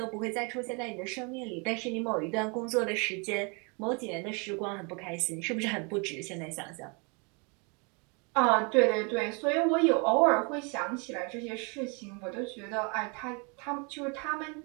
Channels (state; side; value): quieter; left; 33.1 dB